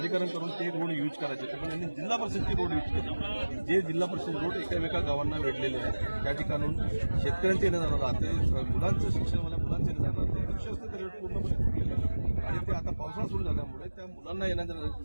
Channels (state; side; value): inverted; both; correlation -1.00